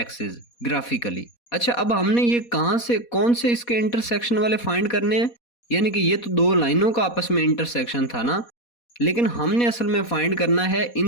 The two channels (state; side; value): late; right; 4.2 ms